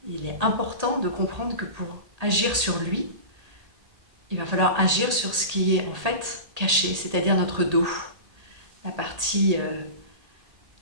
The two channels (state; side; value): late; left; 1.8 ms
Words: Il est important de comprendre que pour agir sur lui, il va falloir agir sur ce qui est en fait caché, c'est-à-dire notre dos, la partie